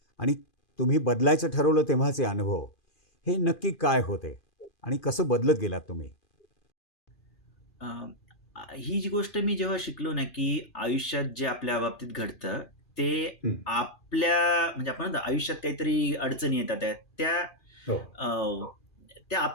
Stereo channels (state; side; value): late; right; 2.4 ms